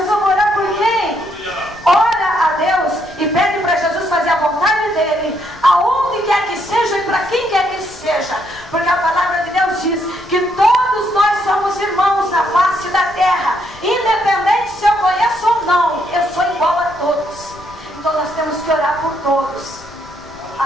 vai orar por quem? Ora a Deus e pede para Jesus fazer a vontade dele, aonde quer que seja e para quem quer que seja, porque a palavra de Deus diz que todos nós somos irmãos na face da terra.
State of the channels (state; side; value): noise; left; rumble, 22 dB below the sound